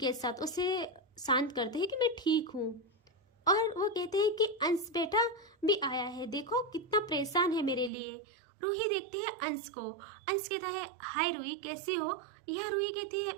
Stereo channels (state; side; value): drops out; left; at 7.9 s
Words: साथ, उसे शांत करते हैं कि मैं ठीक हूँ। और वो कहते हैं कि अंश बेटा भी आया है, देखो कितना परेशान है मेरे लिए। रूही देखती है अंश को। अंश कहता है हाय रूही कैसी हो? यह रूही कहती है